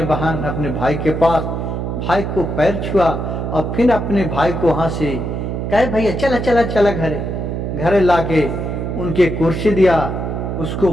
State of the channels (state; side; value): noise; right; hum, 3 dB below the sound